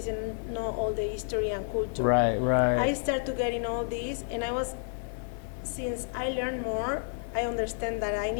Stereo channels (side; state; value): right; silent; digital silence